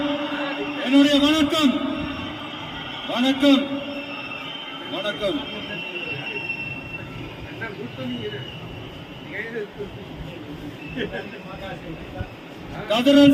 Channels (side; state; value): both; identical; correlation 1.00